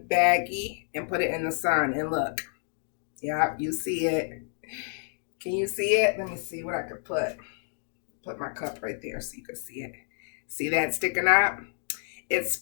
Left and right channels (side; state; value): right; silent; digital silence